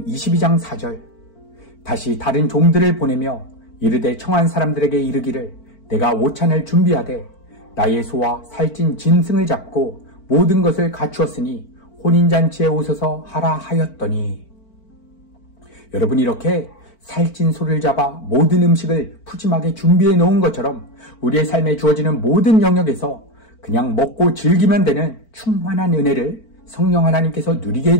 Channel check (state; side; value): late; right; 4.5 ms